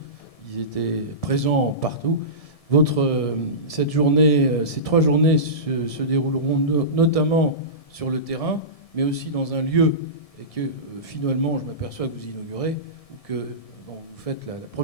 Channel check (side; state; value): right; late; 1.7 ms